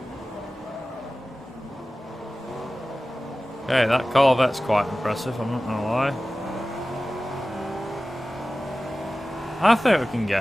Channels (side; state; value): both; normal; correlation 0.96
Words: Okay, that Corvette's quite impressive, I'm not gonna lie. I think we can